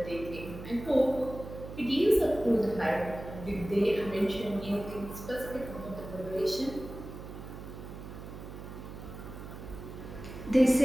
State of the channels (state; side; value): noise; right; hum, 11 dB below the sound